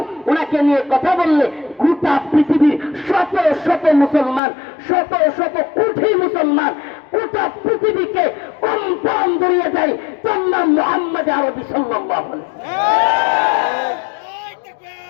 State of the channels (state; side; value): drops out; right; at 4.4 s